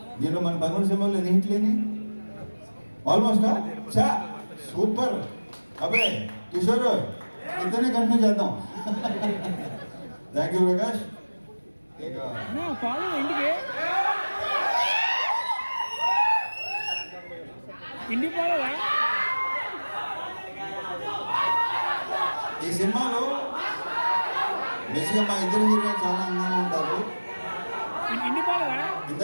దీంట్లో మన 13 సినిమాలు ఎన్ని హిట్లు లేని ఆల్మోస్ట్ చా సూపర్. అబ్బే కిషోర్ ఇద్దరిని కంటిన్యూ చేద్దాం. Thank you Prakash. ఈ సినిమాలో బేసిక్గా మా ఇద్దరు హీరోలు చాలా అందంగా ఉంటారు.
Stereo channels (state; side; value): inverted; both; correlation -1.00